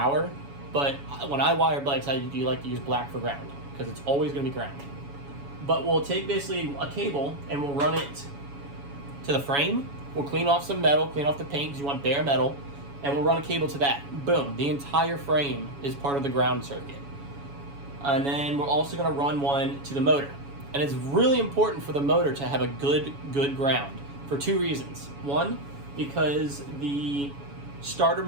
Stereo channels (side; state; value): left; late; 7.1 ms